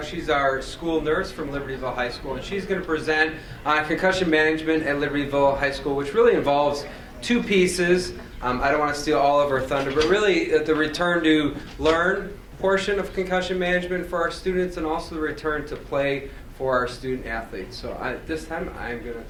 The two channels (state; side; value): identical; both; correlation 1.00